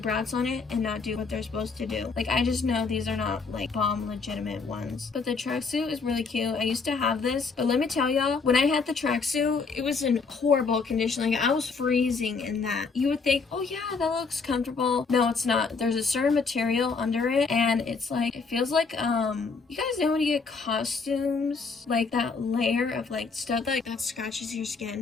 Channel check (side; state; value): right; quieter; 4.7 dB